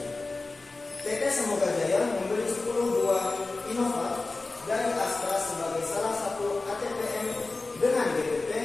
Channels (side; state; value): right; quieter; 3.5 dB